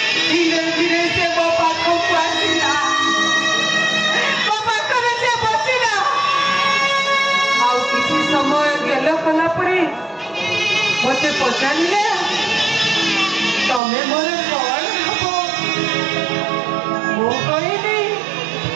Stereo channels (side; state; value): left; drops out; at 13.8 s